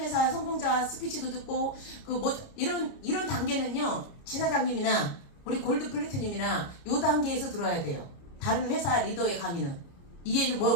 성공자 스피치도 듣고 이런 단계는요 지사장님이나 우리 골드 플래티넘이나 요 단계에서 들어야 돼요. 다른 회사 리더의 강의는 이해는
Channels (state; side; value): late; right; 30 ms